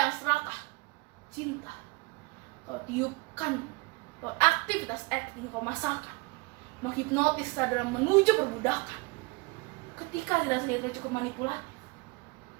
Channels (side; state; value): left; quieter; 26.2 dB